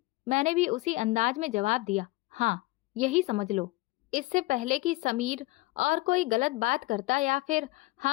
मैंने भी उसी अंदाज में जवाब दिया, हाँ, यही समझ लो। इससे पहले कि समीर और कोई गलत बात करता या फिर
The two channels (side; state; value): right; quieter; 21.3 dB